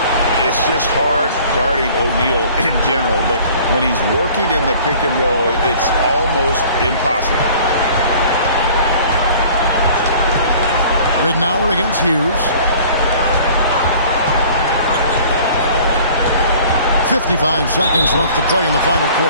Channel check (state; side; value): inverted; both; correlation -0.50